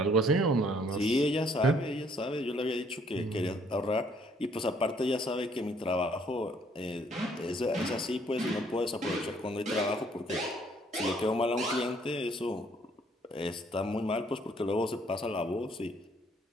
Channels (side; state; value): both; normal; correlation 0.64